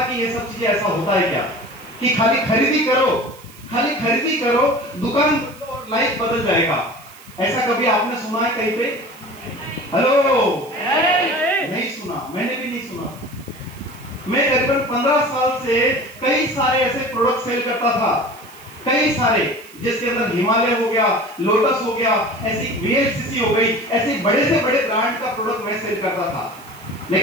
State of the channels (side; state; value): right; noise; hiss, 22 dB below the sound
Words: कि ये सब चीजें ऐसा होता है क्या, कि खाली खरीदी करो, दुकान और लाइफ बदल जाएगा। ऐसा कभी आपने सुना है कहीं पे? हेलो? नहीं सुना, मैंने भी नहीं सुना। मैं करीबन 15 साल से कई सारे ऐसे प्रोडक्ट सेल करता था, कई सारे, जिसके अंदर हिमालय हो गया, लोटस हो गया, ऐसी वीएलसीसी हो गई, ऐसे बड़े से बड़े ब्रांड का प्रोडक्ट मैं सेल करता था।